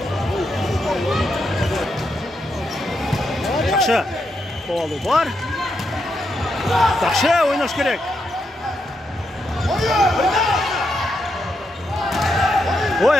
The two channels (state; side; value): normal; both; correlation 0.82